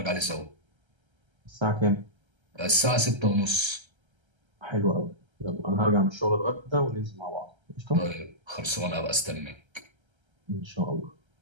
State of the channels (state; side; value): late; left; 1.3 ms